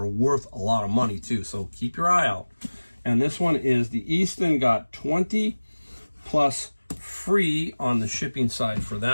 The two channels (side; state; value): both; inverted; correlation -1.00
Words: worth a lot of money too. So keep your eye out. And this one is the Easton got 20 plus free on the shipping side for